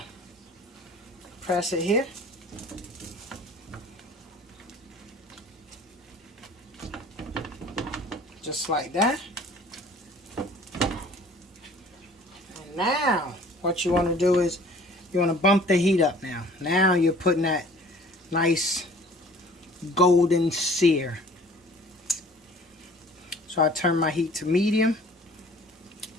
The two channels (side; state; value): both; normal; correlation 0.50